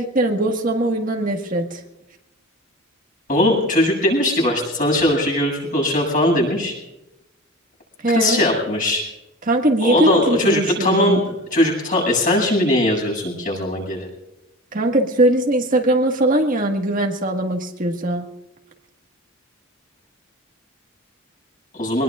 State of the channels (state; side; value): normal; both; correlation 0.35